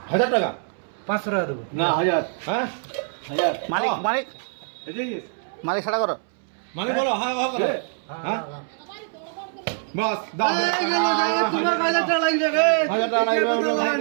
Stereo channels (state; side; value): silent; left; 62 dB below the other